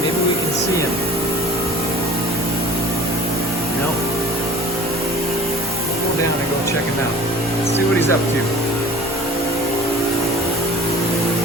we can see him. Nope. We'll go down and go check him out. Let's see what he's up to.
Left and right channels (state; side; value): normal; both; correlation 0.44